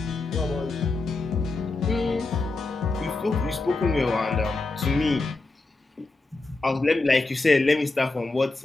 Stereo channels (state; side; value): quieter; right; 3.3 dB